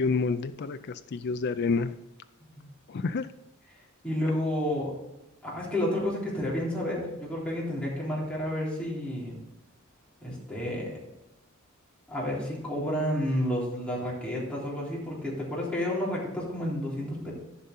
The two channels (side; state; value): both; normal; correlation 0.56